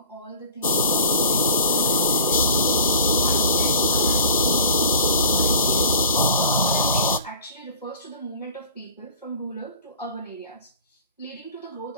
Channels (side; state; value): both; inverted; correlation -0.45